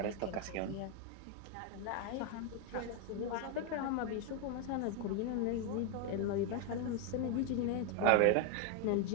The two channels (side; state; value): both; different; correlation 0.01